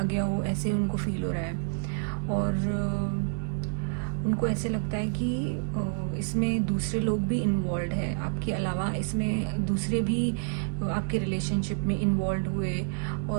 गया हो, ऐसे उनको फील हो रहा है। और उनको ऐसे लगता है कि इसमें दूसरे लोग भी इन्वॉल्व है आपके अलावा। इसमें दूसरे भी आपके रिलेशनशिप में इन्वॉल्व हुए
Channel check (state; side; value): silent; left; digital silence